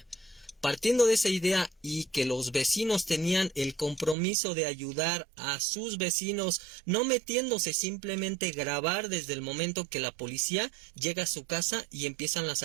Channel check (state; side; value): drops out; left; at 4.2 s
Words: Partiendo de esa idea y que los vecinos tenían el compromiso de ayudar a sus vecinos, no metiéndose, simplemente grabar desde el momento que la policía llega a su casa y empiezan las